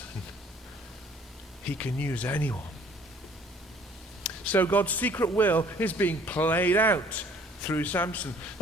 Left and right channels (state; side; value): normal; both; correlation 0.56